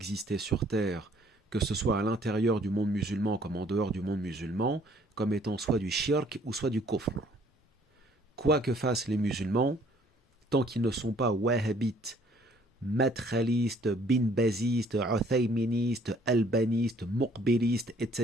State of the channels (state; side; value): normal; both; correlation 0.60